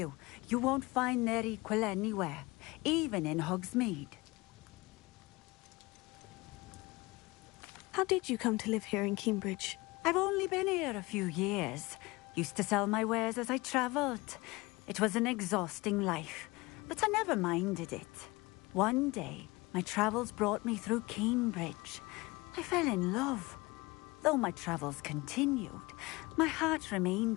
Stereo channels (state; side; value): quieter; right; 22.8 dB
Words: you won't find their equal anywhere, even in Hogsmeade. How did you come to live here in Cambridge? I've only been here a few years. Used to sell my wares as I travelled. It was an exhausting life, but I never minded it. One day, my travels brought me through Cambridge. I fell in love. Though my travels continued, my heart